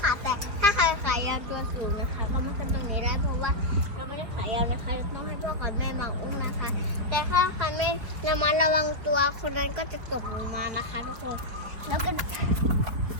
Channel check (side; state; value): left; late; 5.0 ms